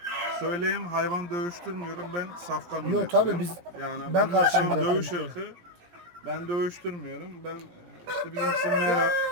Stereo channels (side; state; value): left; late; 17 ms